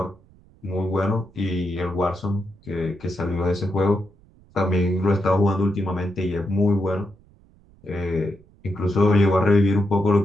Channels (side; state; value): right; noise; rumble, 28 dB below the sound